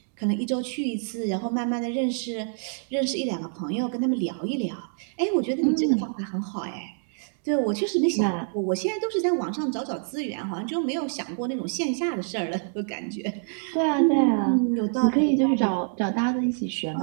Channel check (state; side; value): silent; left; digital silence